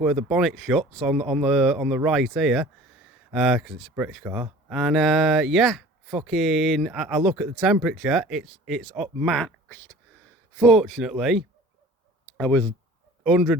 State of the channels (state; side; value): normal; both; correlation 0.45